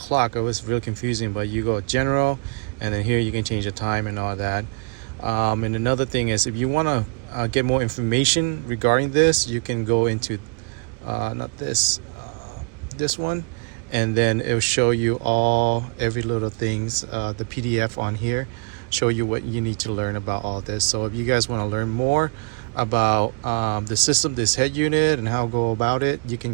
It was really confusing, but you go general, and then here you can change the time and all that. And another thing is, if you want to get more information regarding this, you can go into not this one, and then it will show you every little things, the PDF on here, show you what you need to learn about all this. So if you guys want to learn more about the system, this head unit, and how to go about it, you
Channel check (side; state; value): left; quieter; 37.3 dB